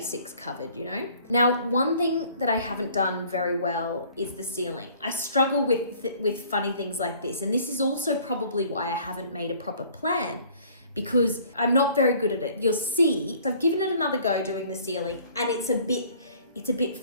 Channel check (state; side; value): inverted; both; correlation -0.55